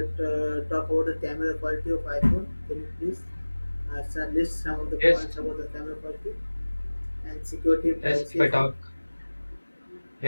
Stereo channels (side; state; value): both; inverted; correlation -1.00